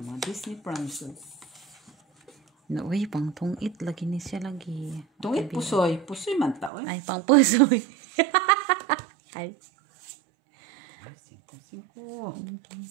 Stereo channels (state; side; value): drops out; left; at 6.7 s